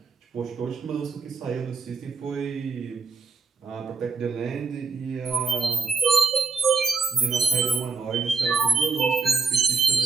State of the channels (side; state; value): left; quieter; 4.7 dB